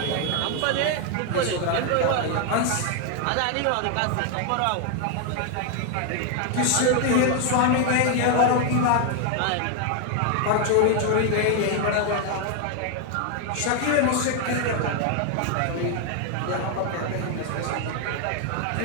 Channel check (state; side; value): different; both; correlation 0.00